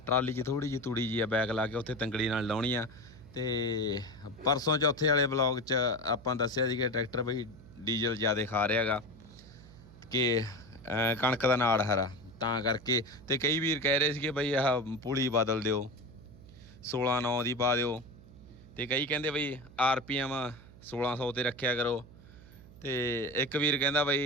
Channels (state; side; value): noise; right; hum, 20 dB below the sound